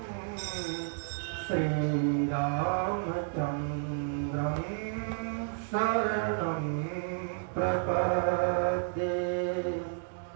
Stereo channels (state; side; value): silent; left; digital silence